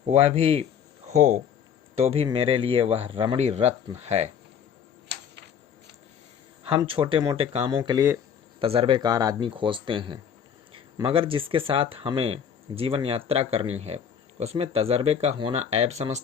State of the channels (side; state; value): right; quieter; 7.8 dB